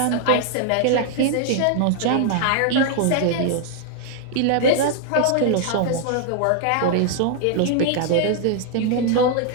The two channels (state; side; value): different; both; correlation 0.00